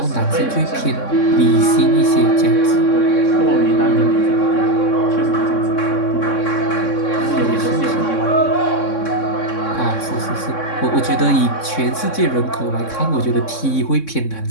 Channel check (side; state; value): right; late; 3.6 ms